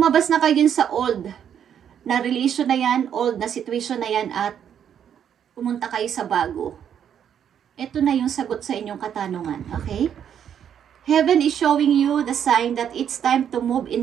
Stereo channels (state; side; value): quieter; left; 8.9 dB